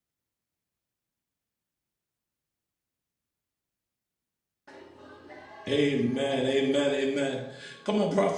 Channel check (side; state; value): both; identical; correlation 1.00